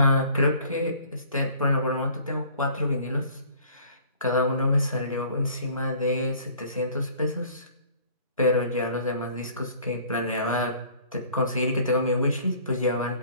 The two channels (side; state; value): both; inverted; correlation -0.53